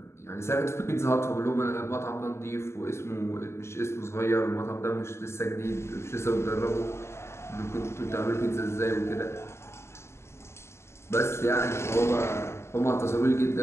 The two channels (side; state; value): right; late; 0.13 ms